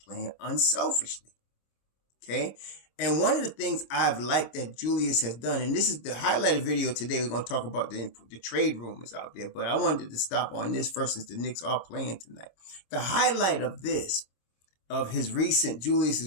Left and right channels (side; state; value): right; late; 26 ms